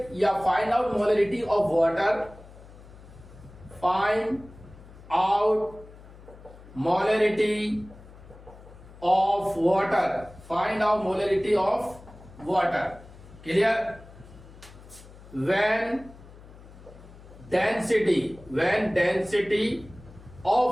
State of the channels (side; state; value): left; noise; hum, 20 dB below the sound